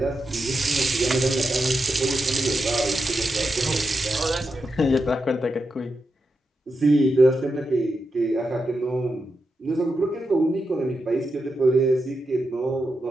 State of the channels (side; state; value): both; normal; correlation 0.87